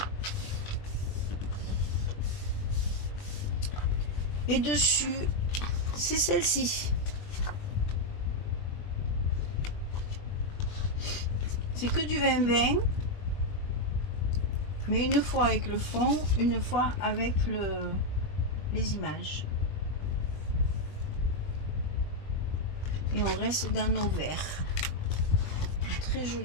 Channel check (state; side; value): late; right; 20 ms